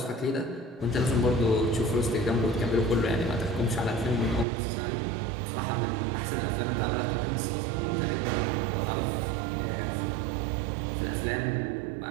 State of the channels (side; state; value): left; drops out; at 4.5 s